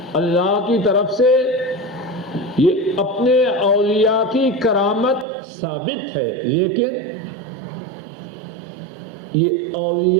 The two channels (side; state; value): left; drops out; at 5.2 s